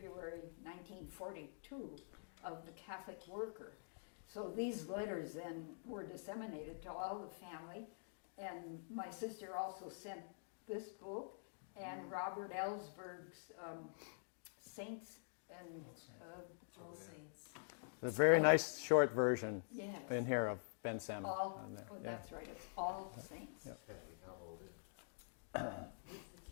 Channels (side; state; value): right; silent; digital silence